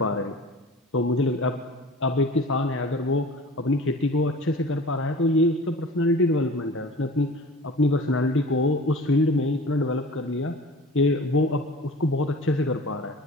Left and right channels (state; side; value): normal; both; correlation 0.40